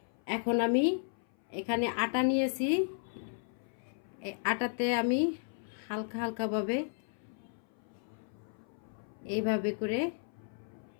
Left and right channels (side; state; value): right; silent; 55 dB below the other